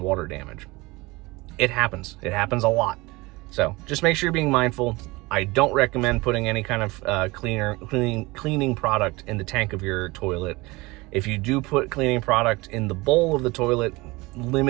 water damage. It happens a lot. So just make sure you're being mindful. I don't recommend putting any kind of cleaning product in the tank of your toilet. If you do put cleaning product in the bowl of the toilet,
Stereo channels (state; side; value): quieter; left; 22.8 dB